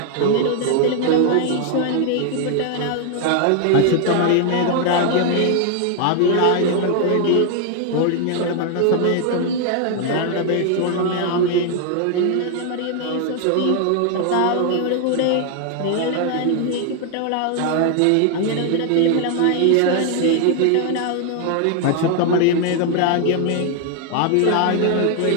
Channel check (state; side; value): different; both; correlation 0.00